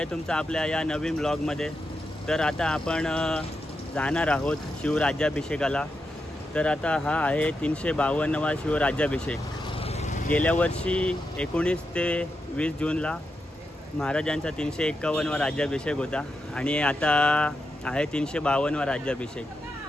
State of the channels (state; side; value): normal; both; correlation 0.86